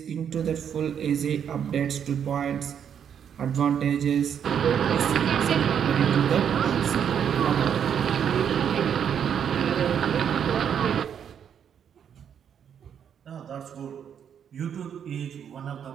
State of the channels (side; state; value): left; quieter; 8.3 dB